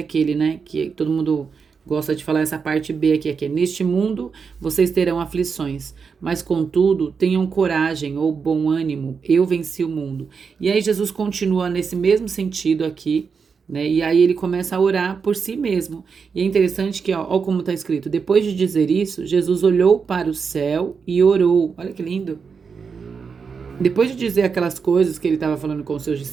né? Que todo mundo gosta de falar essa parte B aqui, que é: neste mundo vocês terão aflições, mas contudo tenham coragem ou bom ânimo, eu venci o mundo. E aí Jesus continua nesse mesmo sentido aqui, né? E aí ele começa a orar por si mesmo. E é interessante que, ó como está escrito: depois de dizer isso, Jesus olhou para o céu e orou. Olha que lindo. Depois de dizer aquelas coisas que ele estava falando com os seus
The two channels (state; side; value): quieter; left; 5.7 dB